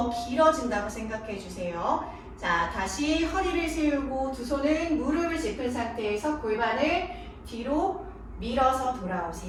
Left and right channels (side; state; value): both; identical; correlation 1.00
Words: 길어진다고 생각해 주세요. 자, 다시 허리를 세우고 두 손은 무릎을 짚은 상태에서 골반을 뒤로 밀어서